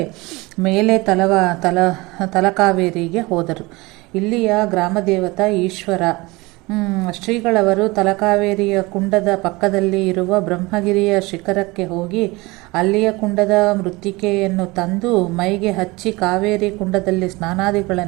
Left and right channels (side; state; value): left; quieter; 23.0 dB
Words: ಮೇಲೆ ತಲಕಾವೇರಿಗೆ ಹೋದರು. ಇಲ್ಲಿಯ ಗ್ರಾಮದೇವತ ಈಶ್ವರ. ಶ್ರೀಗಳವರು ತಲಕಾವೇರಿಯ ಕುಂಡದ ಪಕ್ಕದಲ್ಲಿ ಇರುವ ಬ್ರಹ್ಮಗಿರಿಯ ಶಿಖರಕ್ಕೆ ಹೋಗಿ ಅಲ್ಲಿಯ ಕುಂಡದ ಮೃತ್ತಿಕೆಯನ್ನು ತಂದು ಮೈಗೆ ಹಚ್ಚಿ ಕಾವೇರಿ ಕುಂಡದಲ್ಲಿ